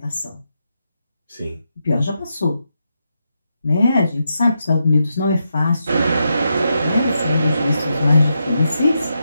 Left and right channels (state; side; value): inverted; both; correlation -0.84